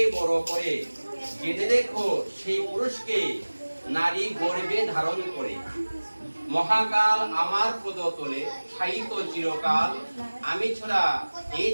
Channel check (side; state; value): both; inverted; correlation -1.00